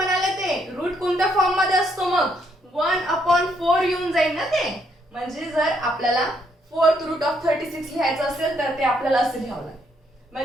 ते रूट कोणत्या फॉर्म मध्ये असतो मग 1/4 येऊन जाईल ना ते. म्हणजे जर आपल्याला 4th रूट ऑफ 36 लिहायचं असेल तर ते आपल्याला असं लिहावं लागेल.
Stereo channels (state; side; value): normal; both; correlation 0.72